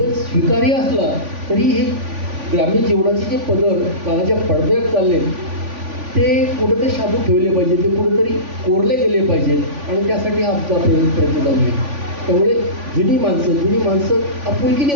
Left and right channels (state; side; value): late; left; 3.5 ms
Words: स्वीकार्य असला, तरी हे ग्रामीण जीवनाचे जे पदर काळाच्या पडद्यात चालले ते कुठेतरी शाबूत ठेवले पाहिजे, ते कुठेतरी कोरले गेले पाहिजेत. आणि त्यासाठी हा आमचा प्रयत्न चालू आहे. त्यामुळे जुनी माणसं आपुलकीने